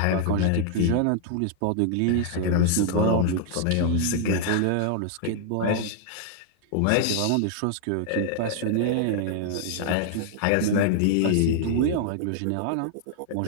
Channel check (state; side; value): different; both; correlation -0.01